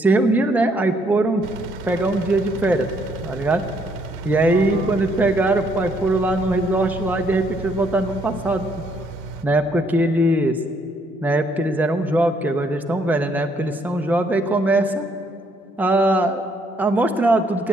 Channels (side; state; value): both; normal; correlation 0.69